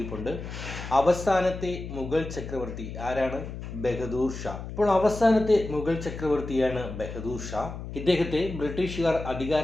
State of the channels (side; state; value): left; noise; hum, 9 dB below the sound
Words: അവസാനത്തെ മുഗൾ ചക്രവർത്തി ആരാണ്? ബഹദൂർ ഷാ. അപ്പോൾ അവസാനത്തെ മുഗൾ ചക്രവർത്തിയാണ് ബഹദൂർ ഷാ. ഇദ്ദേഹത്തെ ബ്രിട്ടീഷുകാർ